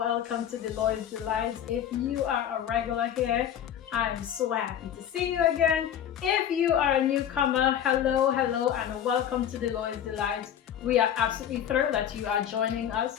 to Deloitte's Delights. If you are a regular here, I'm so happy to see you again. If you are a newcomer, hello, hello, and welcome to Deloitte's Delights. We are absolutely thrilled that you are joining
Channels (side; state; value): right; quieter; 9.9 dB